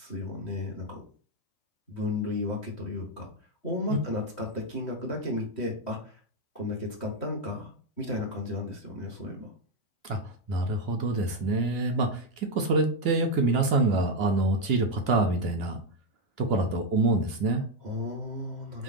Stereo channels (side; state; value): right; late; 2.6 ms